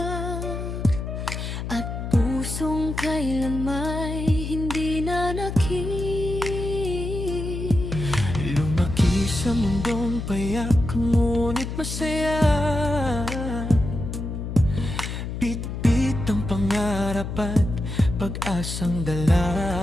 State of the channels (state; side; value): noise; left; hum, 5 dB below the sound